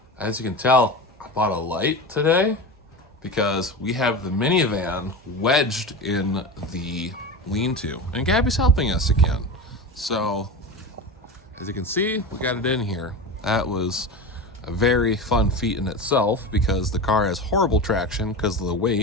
As you can tell, I bought a light today because we have the minivan wedged in the lean-to, and Gabby's helping us again. So as you can see, we got it in here. That was a very fun feat in itself because the car has horrible traction because of the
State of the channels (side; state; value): both; normal; correlation 0.26